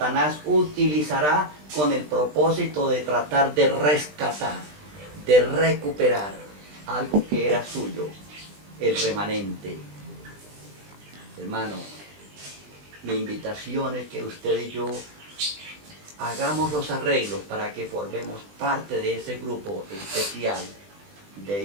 utilizará con el propósito de tratar de rescatar, de recuperar algo que era suyo, el remanente. Hermano, mi invitación es que usted y yo hagamos los arreglos para que formemos parte de ese grupo especial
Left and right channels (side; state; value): left; late; 20 ms